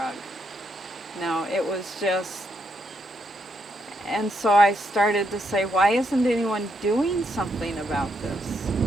No, it was just, and so I started to say, why isn't anyone doing something about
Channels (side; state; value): both; normal; correlation 0.78